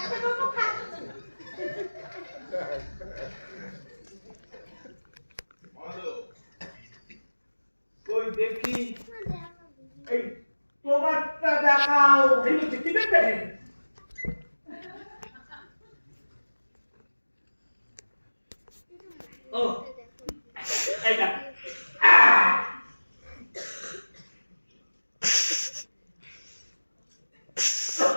কই দেখি, এই তোমারটা দেখাও। কি দেখবে? ও এইটা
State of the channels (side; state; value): both; inverted; correlation -1.00